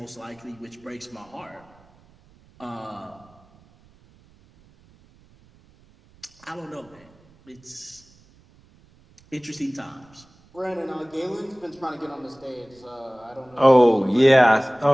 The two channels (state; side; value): noise; right; rumble, 29 dB below the sound